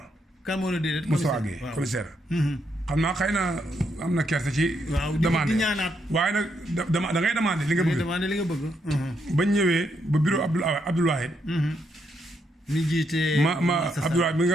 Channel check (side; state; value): both; normal; correlation 0.78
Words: kan moo ne déedéet. Moustapha Guèye commissaire. xam naa xëy na am na kersa ci. waaw demande di ñaanaat. waaye nag da ngay demandé li nga bëgg. demandé li nga bëgg. bañ ñëwee ba bureau Abdoul Wahid. mi jiite. Abdoul Wahid mi nga